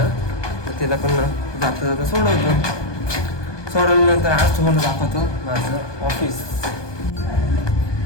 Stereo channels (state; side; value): late; right; 1.2 ms